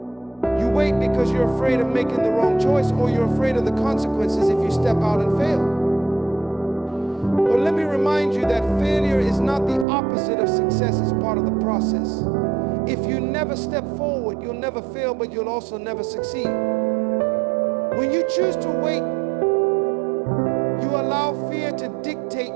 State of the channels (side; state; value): left; drops out; at 9.9 s